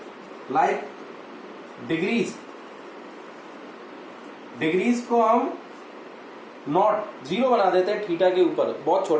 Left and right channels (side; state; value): both; identical; correlation 1.00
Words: like degrees, degrees को हम नॉट, 0 बना देते हैं थीटा के ऊपर, बहुत